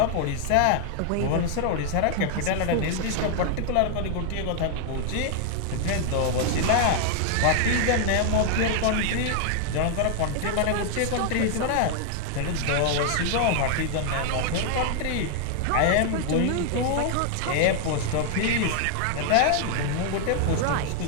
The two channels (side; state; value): both; different; correlation 0.00